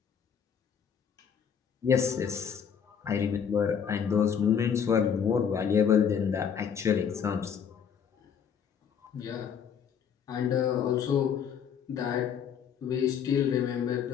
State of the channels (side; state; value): right; quieter; 7.6 dB